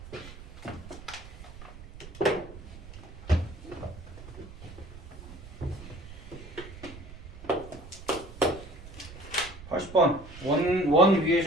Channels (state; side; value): noise; right; rumble, 15 dB below the sound